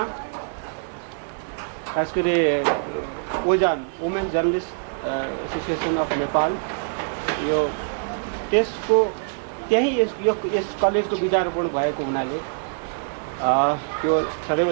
खास गरी ओजान women journalist association of Nepal यो त्यसको त्यही यस कलेजको बिजारोपण भएको हुनाले त्यो सदैव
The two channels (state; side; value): silent; left; digital silence